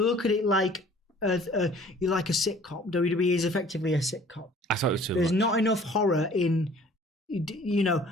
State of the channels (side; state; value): both; normal; correlation 0.52